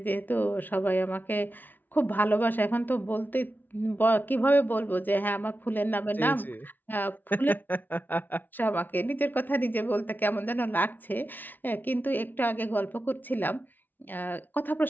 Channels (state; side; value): late; right; 0.087 ms